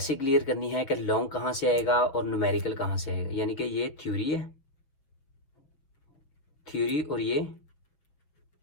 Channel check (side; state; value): right; late; 7.0 ms